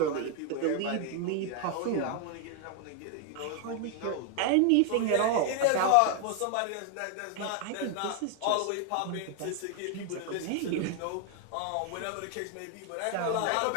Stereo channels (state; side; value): different; both; correlation 0.00